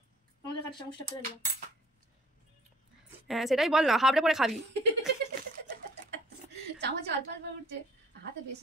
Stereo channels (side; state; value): both; normal; correlation 0.54